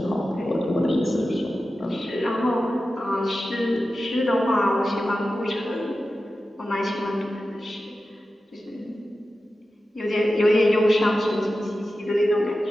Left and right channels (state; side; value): normal; both; correlation 0.93